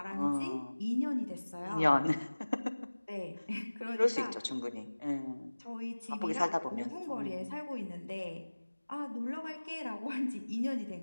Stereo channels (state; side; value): inverted; both; correlation -1.00